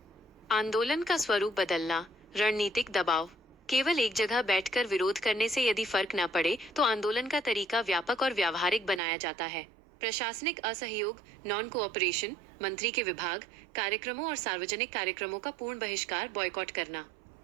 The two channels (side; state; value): left; drops out; at 9.0 s